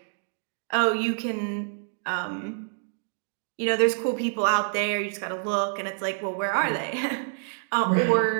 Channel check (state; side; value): silent; left; digital silence